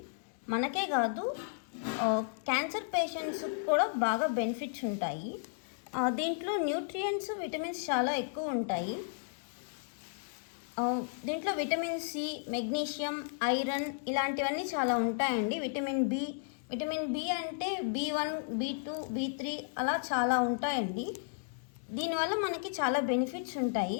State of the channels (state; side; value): silent; right; digital silence